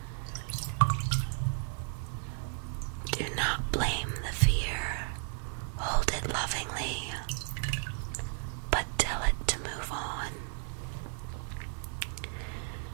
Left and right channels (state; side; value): silent; left; 55 dB below the other